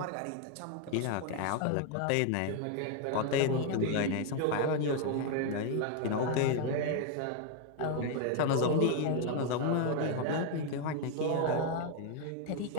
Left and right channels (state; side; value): different; both; correlation 0.01